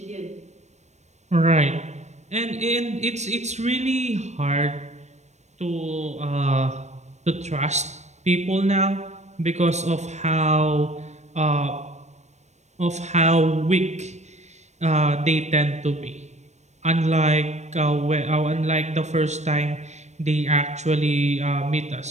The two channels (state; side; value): late; left; 0.33 ms